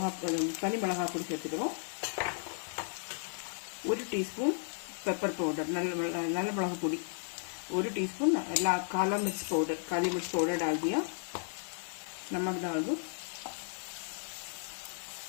தனி மிளகாய் பொடி சேர்த்துக்கிறோம். 1 டீஸ்பூன் पेपर पाउडर नल मिளகு பொடி 1 टीस्पून काला मिर्च पाउडर डाल दिया। नमक डाल दो,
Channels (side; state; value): right; silent; digital silence